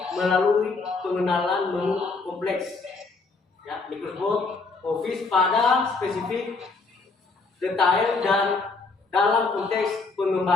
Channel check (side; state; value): right; quieter; 4.0 dB